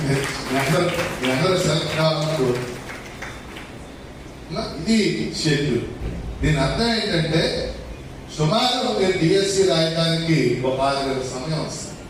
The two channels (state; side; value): identical; both; correlation 1.00